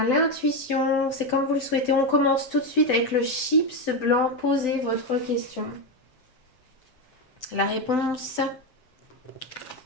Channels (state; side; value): late; right; 7.8 ms